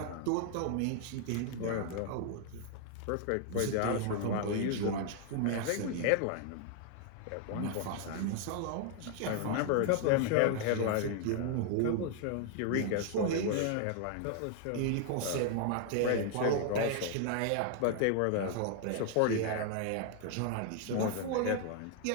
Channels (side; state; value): both; different; correlation 0.00